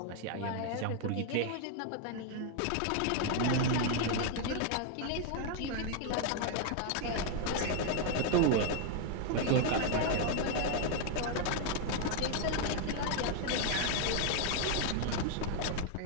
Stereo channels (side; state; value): both; different; correlation 0.00